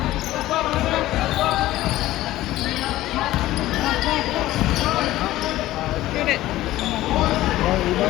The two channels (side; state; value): right; quieter; 15.7 dB